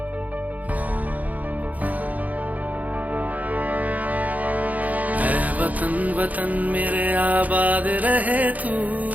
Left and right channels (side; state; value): left; late; 0.077 ms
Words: वतन वतन मेरे आबाद रहे तू,